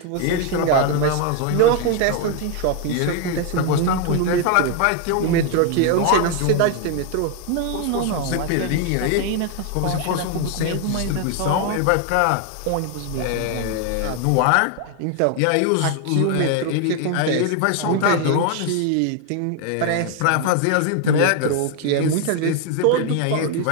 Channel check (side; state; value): both; different; correlation 0.01